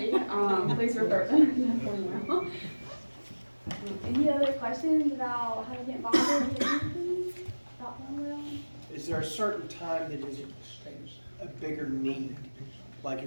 please refer them. Any other questions about how to get involved with anything about Thornwell? Is there a certain time that is a bigger need? Like,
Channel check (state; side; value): inverted; both; correlation -1.00